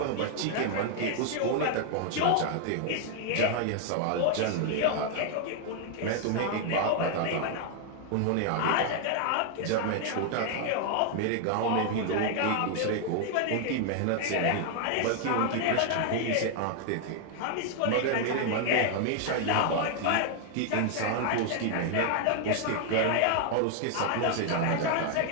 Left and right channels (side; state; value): both; different; correlation 0.00